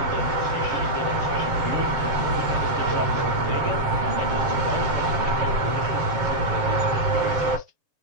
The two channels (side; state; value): left; late; 7.4 ms